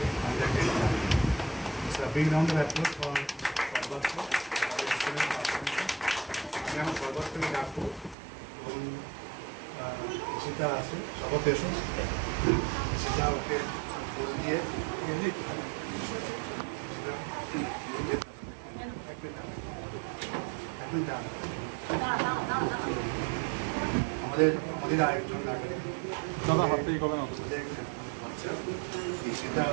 Under-10 Champion. So a big round of applause for Sarbatko. আমি আমার সর্বত্রকে ডাকবো এবং সেটা আছে সবার দেশও সেটা ওকে বল দিয়ে আমাদের আরেকজন দাদা হাত থেকে কবে না সেটা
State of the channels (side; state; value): left; drops out; at 8.2 s